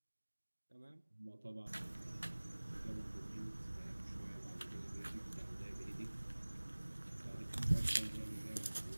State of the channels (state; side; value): inverted; both; correlation -1.00